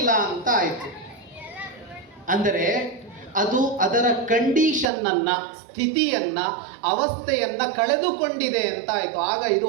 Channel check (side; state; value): left; drops out; at 4.9 s